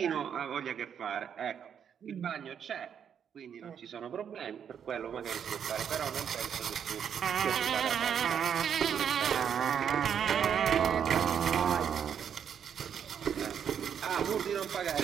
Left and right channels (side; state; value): left; quieter; 8.1 dB